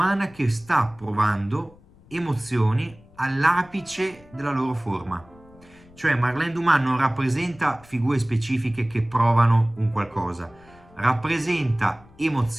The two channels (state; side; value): noise; left; rumble, 26 dB below the sound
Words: che sta provando emozioni all'apice della loro forma. Cioè Marlene Dumas non rappresenta figure specifiche che provano un qualcosa, rappresenta